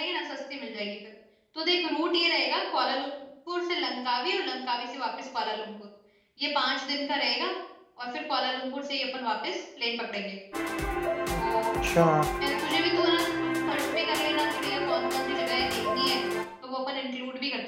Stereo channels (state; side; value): identical; both; correlation 1.00